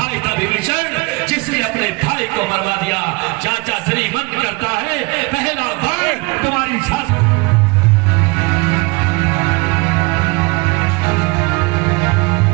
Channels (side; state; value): left; quieter; 26.9 dB